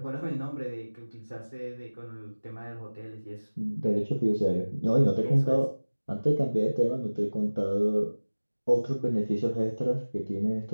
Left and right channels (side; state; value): both; inverted; correlation -1.00